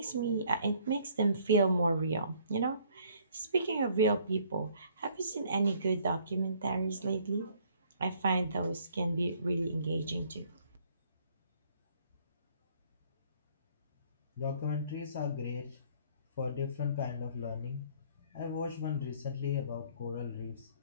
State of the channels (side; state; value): both; inverted; correlation -0.61